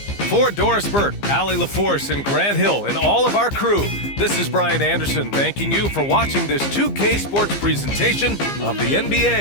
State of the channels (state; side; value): late; right; 15 ms